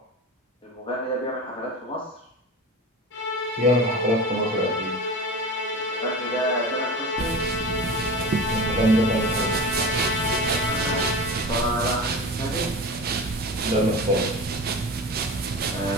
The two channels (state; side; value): normal; both; correlation 0.31